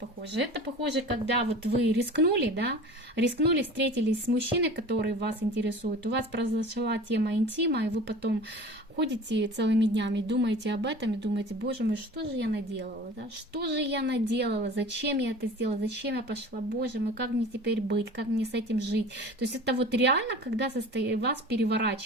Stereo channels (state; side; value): normal; both; correlation 0.40